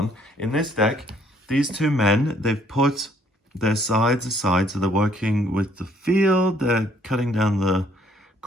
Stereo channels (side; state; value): both; normal; correlation 0.64